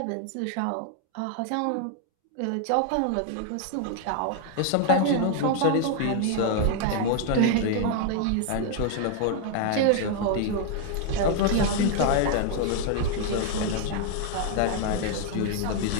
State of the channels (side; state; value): both; different; correlation 0.00